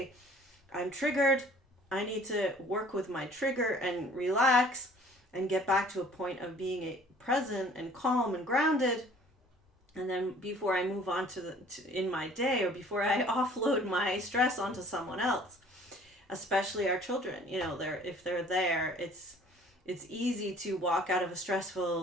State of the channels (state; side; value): normal; both; correlation 0.53